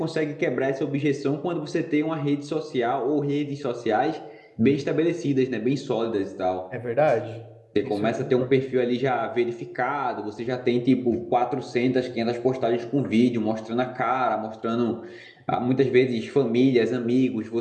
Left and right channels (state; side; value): identical; both; correlation 1.00